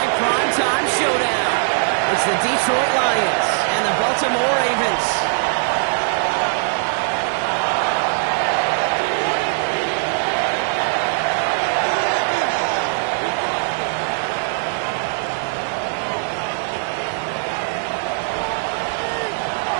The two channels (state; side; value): silent; left; digital silence